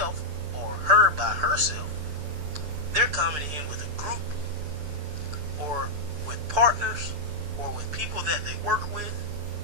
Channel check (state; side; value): late; left; 7.3 ms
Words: or her by herself, they're coming in with a group or with partners or with people that they work with